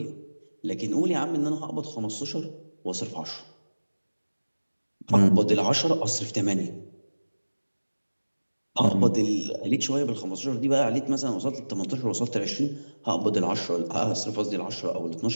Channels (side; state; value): both; inverted; correlation -1.00